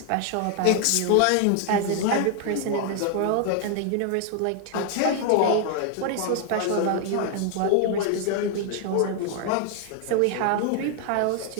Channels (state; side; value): different; both; correlation 0.00